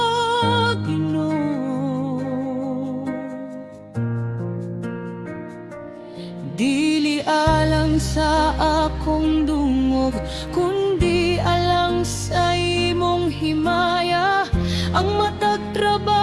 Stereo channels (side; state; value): both; identical; correlation 1.00